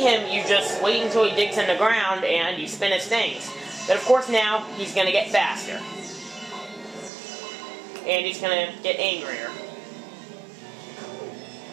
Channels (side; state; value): left; drops out; at 7.1 s